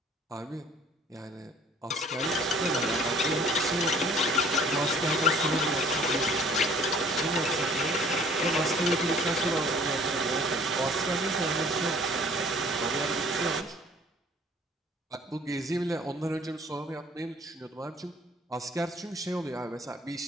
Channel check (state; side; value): normal; both; correlation 0.54